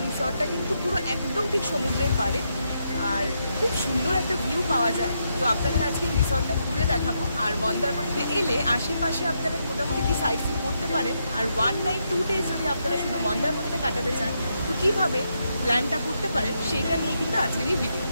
রিসর্টটা কিন্তু পুরো একদম ঠিক সমুদ্রের পাড়ে আর খুব সুন্দর একটা ভিউ পাওয়া যায়। তো আপনাদের আজকে রিসর্টটা ঘুরে দেখাবো। আর মন্দারমণিতে এলে আশেপাশে আপনারা মোটামুটি কি সাইট সিন করতে পারেন। আর 1 নাইট 2 ডেজ যদি আপনারা শুধু মন্দারমণিতে কাটাতে চান তো কীভাবে প্ল্যানটা করতে পারেন সেইটা নিয়ে কিন্তু আজকের এই ভিডিও।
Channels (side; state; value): both; inverted; correlation -0.81